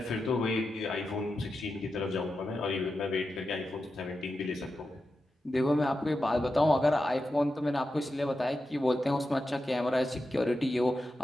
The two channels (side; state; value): both; normal; correlation 0.90